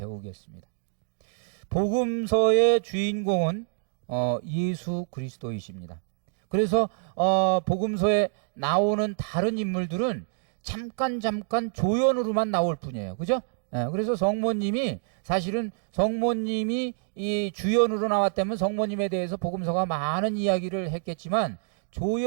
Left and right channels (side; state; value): left; silent; digital silence